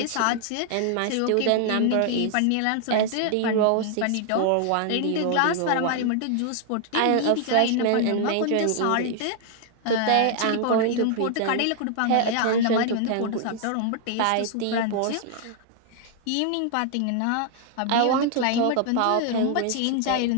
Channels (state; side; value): different; both; correlation 0.00